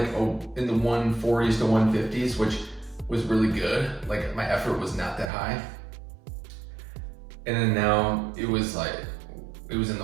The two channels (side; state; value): left; drops out; at 5.3 s